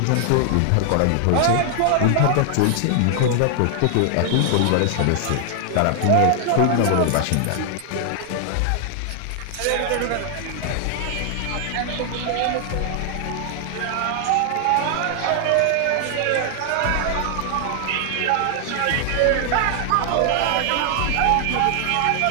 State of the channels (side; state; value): both; different; correlation 0.00